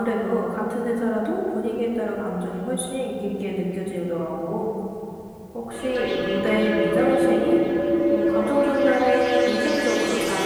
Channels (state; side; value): identical; both; correlation 1.00